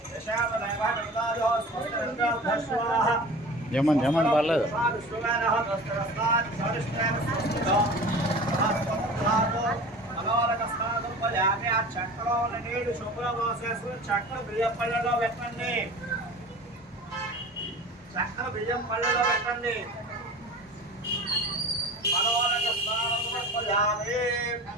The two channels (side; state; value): both; normal; correlation 0.38